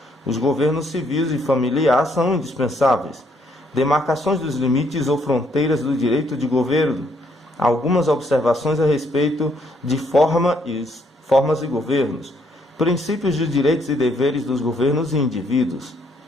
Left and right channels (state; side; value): normal; both; correlation 0.70